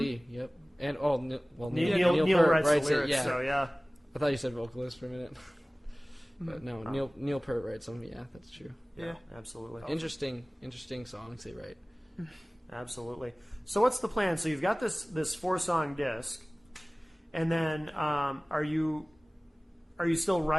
yep. And, Neil Peart writes the lyrics, it, yeah. so yeah. I thought you said vocalist for a minute. But no, Neil Peart writes them. Yeah, that's true. Yeah. Absolutely. Interesting songs they write. Absolutely. So what's the plan? So you've got this 4-song disc, and then are you still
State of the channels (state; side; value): normal; both; correlation 0.98